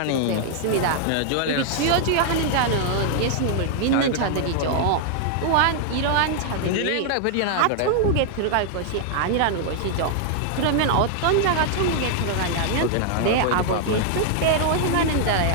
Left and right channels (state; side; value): different; both; correlation 0.00